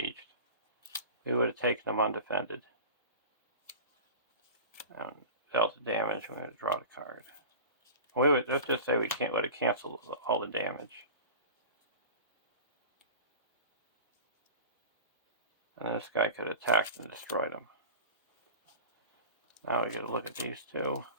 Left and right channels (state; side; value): inverted; both; correlation -0.35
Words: We would have taken him undefended. and dealt the damage. We're going to draw the card. Let's just say we would have canceled all the damage. And this guy could have attacked and destroyed him. Now we get to look at these two.